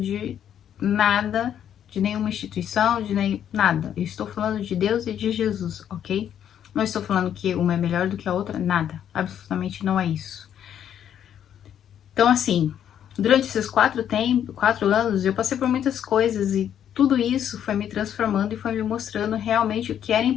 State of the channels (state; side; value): quieter; right; 9.7 dB